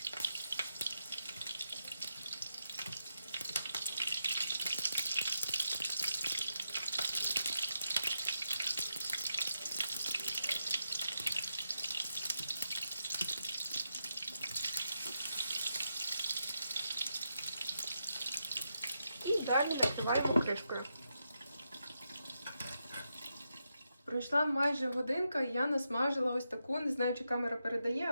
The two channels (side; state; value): both; inverted; correlation -0.84